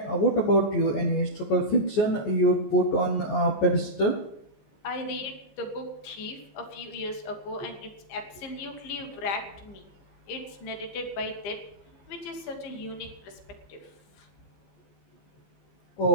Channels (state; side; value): late; right; 15 ms